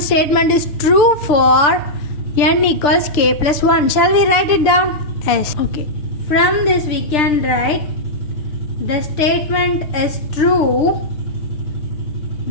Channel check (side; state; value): right; late; 6.8 ms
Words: statement is true for n equals k plus 1. Shall we write it down? Yes. Okay. From this we can write the statement is true.